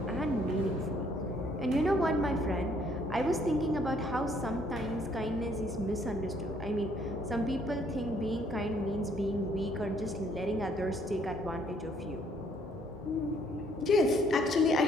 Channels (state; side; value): normal; both; correlation 0.65